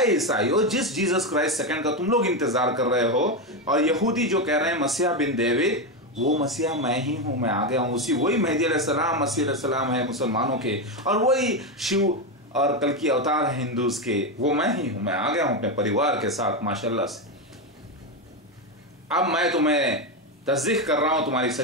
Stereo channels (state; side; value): normal; both; correlation 0.11